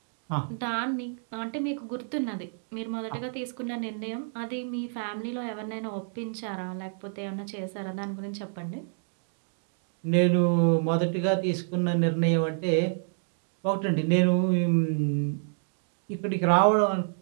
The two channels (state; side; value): silent; left; digital silence